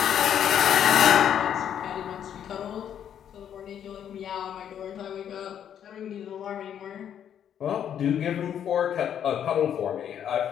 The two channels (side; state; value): right; quieter; 9.3 dB